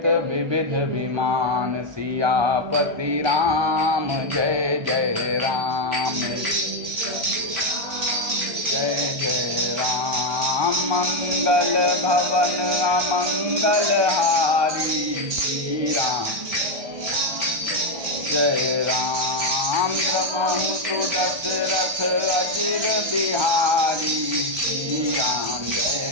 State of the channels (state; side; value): late; left; 1.2 ms